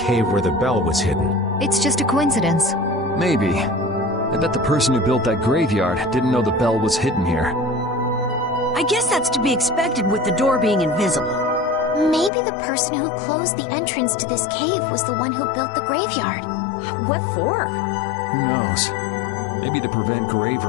where the bell was hidden? It's just a coincidence. Maybe. I bet the person who built that graveyard didn't know the bell was hidden here. I guess that's to be expected with the door being invisible. Maybe the person who closed the entrance to this cave was the one who built the graveyard. What for? Who knows? Maybe to prevent grave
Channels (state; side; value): drops out; right; at 12.3 s